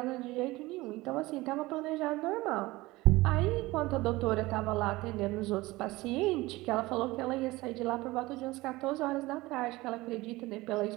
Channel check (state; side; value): quieter; left; 20.0 dB